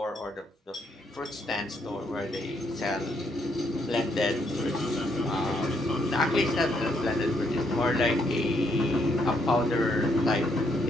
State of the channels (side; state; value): both; normal; correlation 0.74